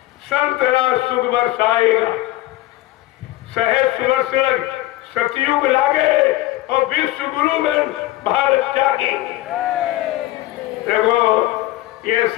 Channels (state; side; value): quieter; right; 16.6 dB